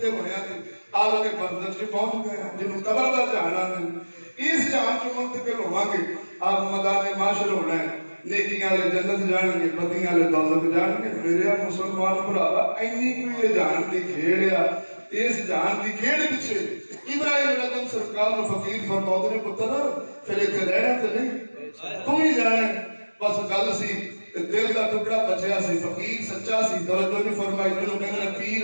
ہویا تے عالم برزخ چ پہنچ گیا جنوں قبر دا جہان آندے اس جہان چ منتقل ہوواں گے آپ میدان محشر ہونا ہے نیکیاں والے جنت جان گے بدیاں والے دوزخ جان گے میرے مسلمان بھراوا اینی کوئی جہان دی کھیڑ ہے اس جہان دی کھیڑ پیچھے ابراہیم علیہ السلام سرکار نو فقیر فرماؤ نے پتر پھر ایتھے رہنا تے نہیں تو ہی جانا بس گل سی دل دا ٹکڑا بچیا سی فقیر سچا سی توجہ نہیں فرمائی جنوں کہندے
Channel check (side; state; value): both; inverted; correlation -1.00